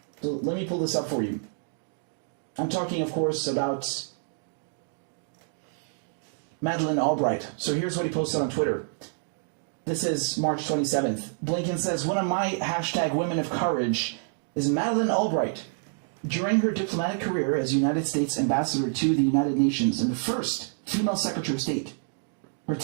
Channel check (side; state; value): left; silent; digital silence